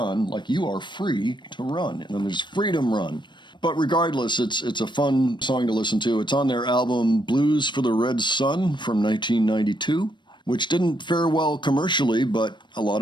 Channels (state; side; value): late; right; 0.22 ms